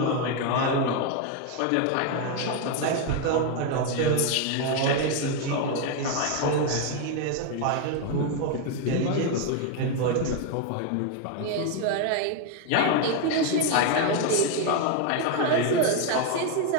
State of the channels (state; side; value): different; both; correlation 0.01